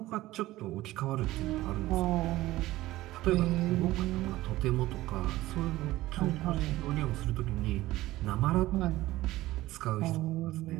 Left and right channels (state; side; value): quieter; left; 16.9 dB